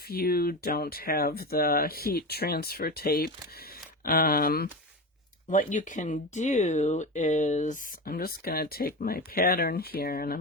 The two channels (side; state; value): both; normal; correlation 0.23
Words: you don't have the heat transfer tape, what you can do is, I'm just going to take my pattern here and